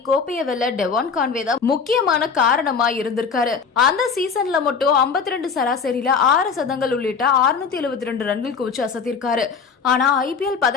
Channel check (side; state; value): right; quieter; 5.7 dB